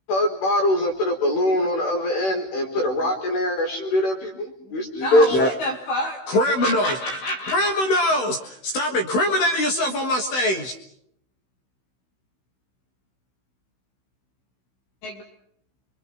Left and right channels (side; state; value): right; late; 16 ms